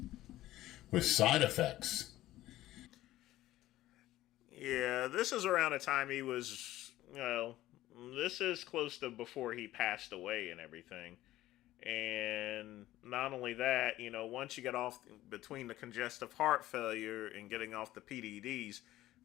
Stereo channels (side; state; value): right; quieter; 15.3 dB